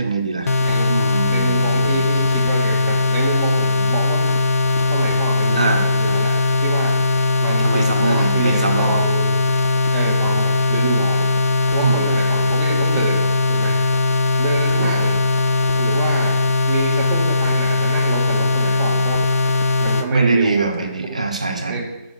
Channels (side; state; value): both; inverted; correlation -0.76